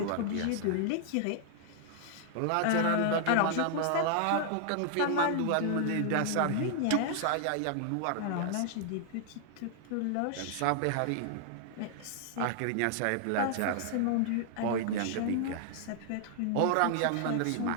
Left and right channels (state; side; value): different; both; correlation -0.01